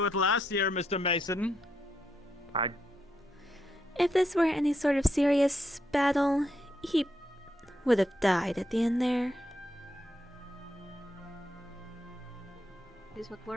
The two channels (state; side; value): normal; both; correlation 0.80